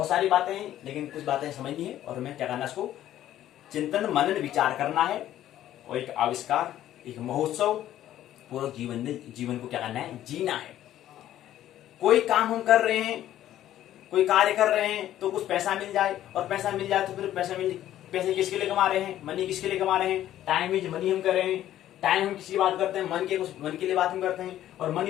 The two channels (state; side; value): quieter; right; 12.5 dB